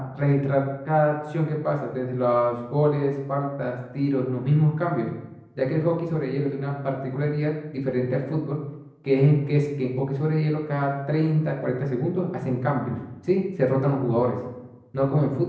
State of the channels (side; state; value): both; identical; correlation 1.00